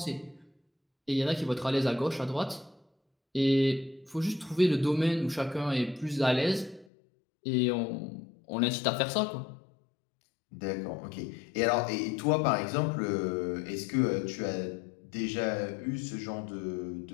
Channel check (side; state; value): right; drops out; at 6.9 s